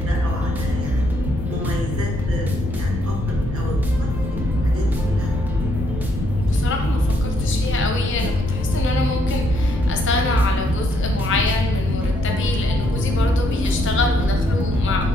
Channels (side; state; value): left; noise; rumble, 7 dB below the sound